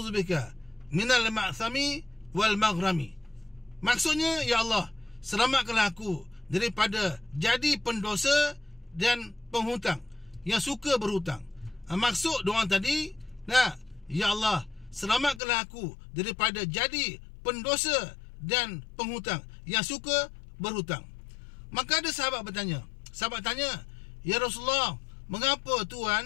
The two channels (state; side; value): drops out; right; at 15.4 s